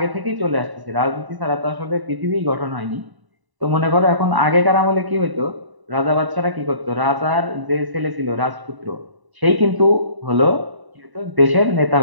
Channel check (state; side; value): late; left; 1.0 ms